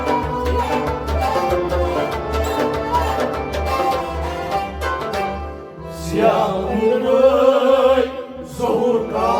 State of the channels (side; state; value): both; identical; correlation 1.00